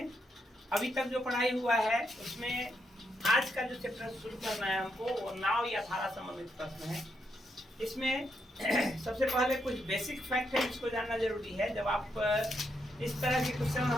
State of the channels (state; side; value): normal; both; correlation 0.80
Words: अभी तक जो पढ़ाई हुआ है उसमें आज का जो चैप्टर शुरू करना है हमको वो नाव या धारा संबंधित प्रश्न है। इसमें सबसे पहले कुछ बेसिक फैक्ट है जिसको जानना जरूरी है। जब आप इस तरह के